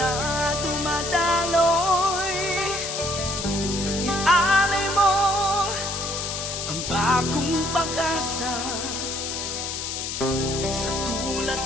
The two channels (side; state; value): left; noise; hiss, 4 dB below the sound